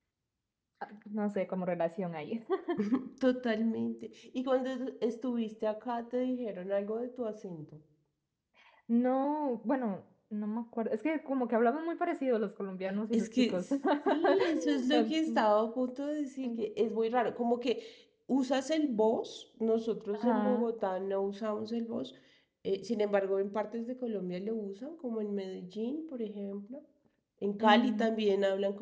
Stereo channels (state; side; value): identical; both; correlation 1.00